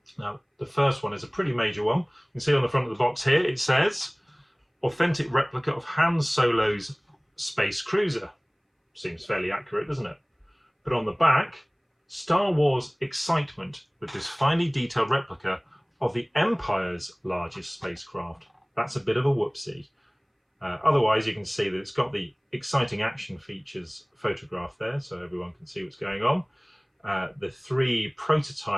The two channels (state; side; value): identical; both; correlation 1.00